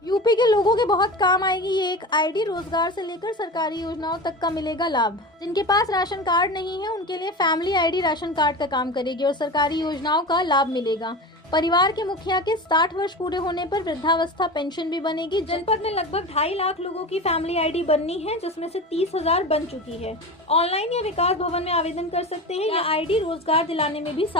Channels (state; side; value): normal; both; correlation 0.29